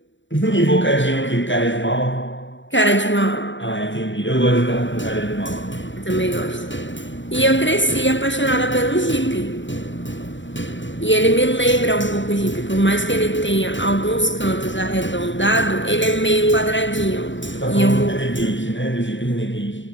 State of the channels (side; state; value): right; late; 0.54 ms